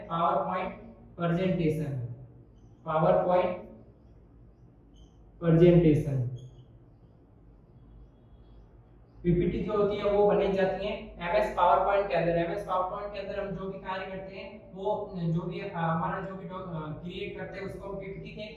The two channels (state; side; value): identical; both; correlation 1.00